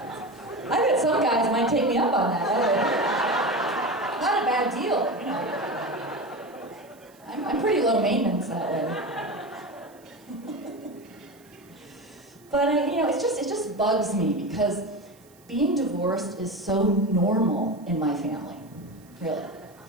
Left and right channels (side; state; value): right; noise; hiss, 29 dB below the sound